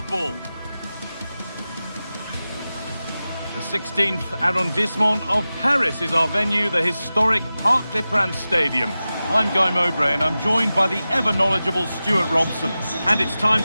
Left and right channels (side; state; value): both; inverted; correlation -0.95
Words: The 16th arrondissement of Paris is our venue, the historic Parc des Princes Stadium. I'm Guy Mowbray and I'm joined by the ever-knowledgeable Stuart Robson. And it's time